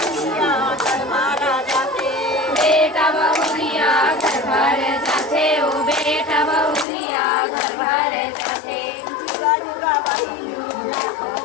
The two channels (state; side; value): drops out; right; at 6.9 s